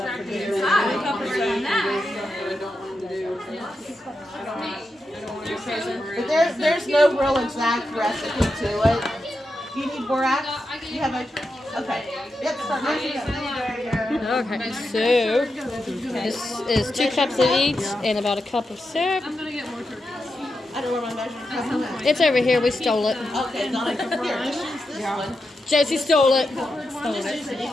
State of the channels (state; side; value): normal; both; correlation 0.87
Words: But there's no real exact recipe to it. Do you need borax? Do you have a? Okay. Yep. Start measuring it. Okay, so this is 2 cups of each and about a cup of syrup. I'm gonna get more turkey. I don't know where my measuring cup is. It's over here. We stole it. Okay, Donna, here, just use this one. Josie stole it. I'm just using